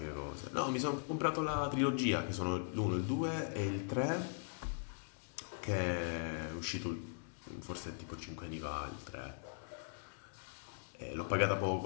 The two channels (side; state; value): right; silent; digital silence